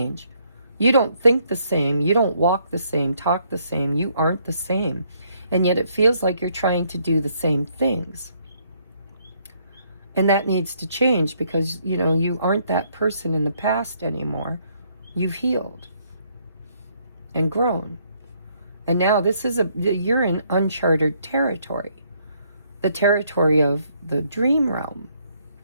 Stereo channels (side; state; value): both; inverted; correlation -0.70